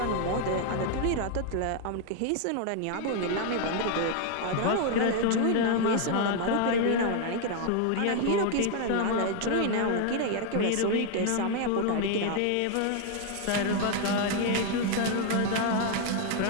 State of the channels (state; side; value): different; both; correlation 0.00